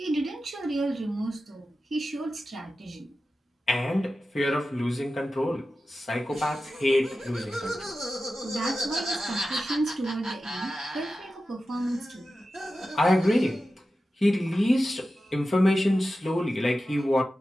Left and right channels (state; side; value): normal; both; correlation 0.93